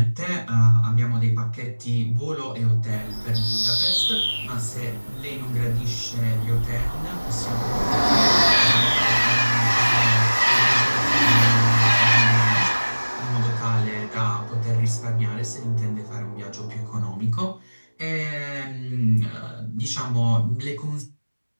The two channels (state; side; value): inverted; both; correlation -1.00